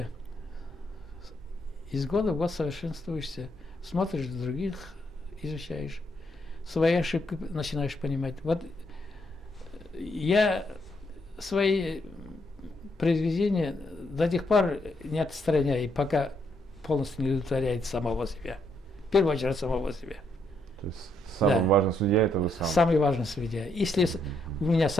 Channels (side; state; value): both; normal; correlation 0.75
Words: Из года в год совершенствуешься. Смотришь других, изучаешь. Свои ошибки начинаешь понимать. Вот я свои произведения до тех пор не отстраняю, пока полностью не удовлетворяет самого себя. В первую очередь самого себя. То есть самый важный судья — это вы сам? Самый важный судья. Если у меня